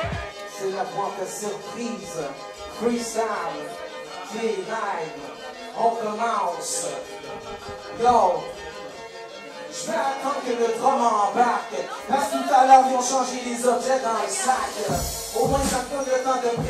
C'est la boîte de surprise, freestyle, K9, on commence. Yo, je vais attendre que le drum embarque, parce que tout à l'heure ils ont changé les objets dans le sac. Au moins ça me donne le temps de me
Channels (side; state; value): both; identical; correlation 1.00